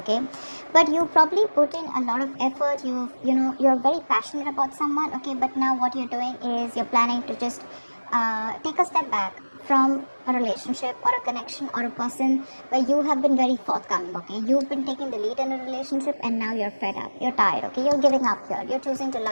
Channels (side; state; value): both; inverted; correlation -1.00